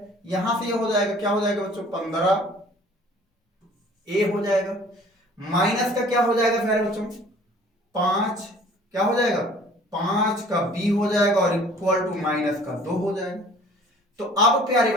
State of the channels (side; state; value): both; normal; correlation 0.51